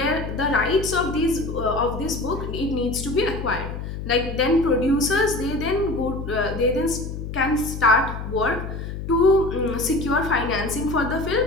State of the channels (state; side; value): noise; left; hum, 7 dB below the sound